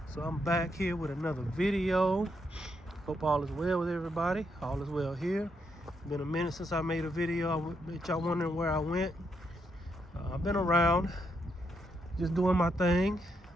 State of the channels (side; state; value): both; normal; correlation 0.78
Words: So I'm back here with another video. Hope all is well with everybody. All is well here. Been a minute since I made a video. I bet y'all wondering where I went. I've been around, just doing my thing.